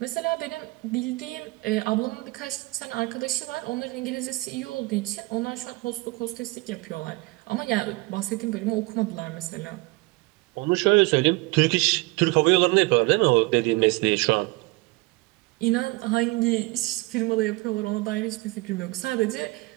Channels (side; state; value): left; quieter; 23.2 dB